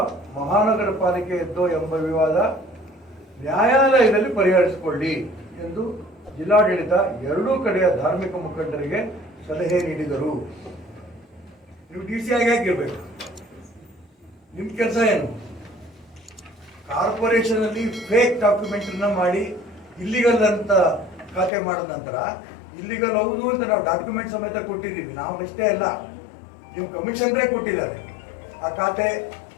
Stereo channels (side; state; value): right; drops out; at 21.5 s